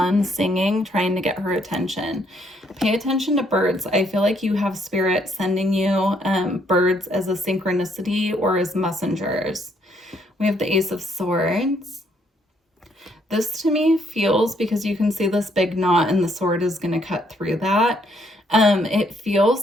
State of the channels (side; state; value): both; normal; correlation 0.70